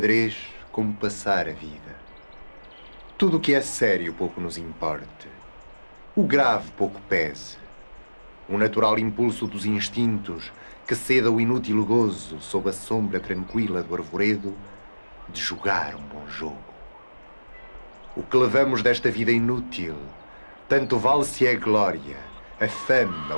como passar a vida. Tudo o que é sério pouco nos importe, o grave pouco pese, o natural impulso dos instintos que ceda o inútil gozo sob a sombra tranquila do arvoredo de jogar um bom jogo. O que levamos desta vida inútil, tanto vale se é a glória, a fama,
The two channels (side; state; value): both; inverted; correlation -1.00